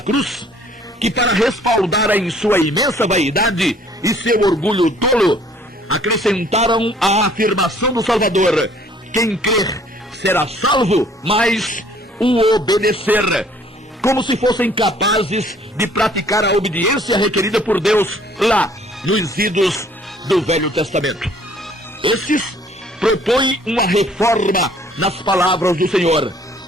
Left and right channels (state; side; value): normal; both; correlation 0.58